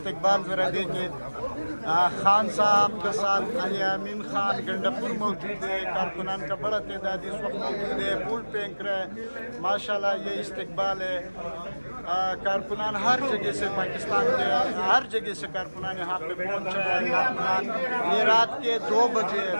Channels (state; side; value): inverted; both; correlation -1.00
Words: जरा देखिए। खान साहब के साथ अली अमीन खान गंडापुर मौजूद है। कारकुनान का बड़ा तादाद इस वक्त मौजूद है। फूल फेंक रहे हैं माशाल्लाह। ये इस्तकबाल है। कारकुनान हर जगह से, पाकिस्तान के हर जगह से कारकुनान यहाँ पे पहुँचे हैं। कारकुनान ये रात के 2 बज